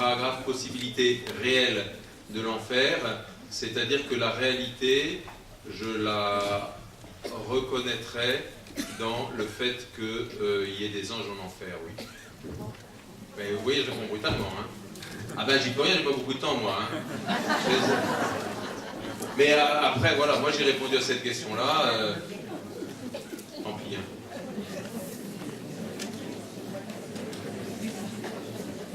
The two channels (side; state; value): both; identical; correlation 1.00